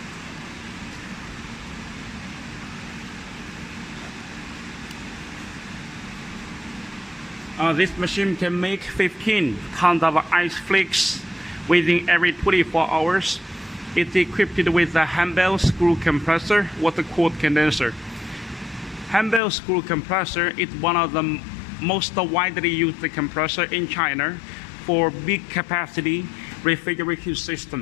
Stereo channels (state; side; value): drops out; right; at 19.4 s